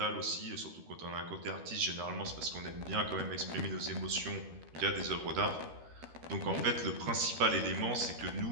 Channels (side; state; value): left; late; 13 ms